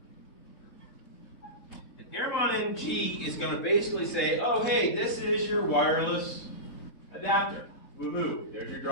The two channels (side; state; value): right; late; 3.7 ms